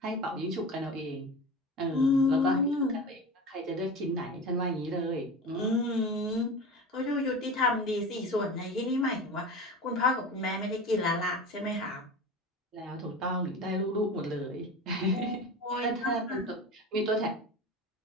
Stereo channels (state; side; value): normal; both; correlation 0.31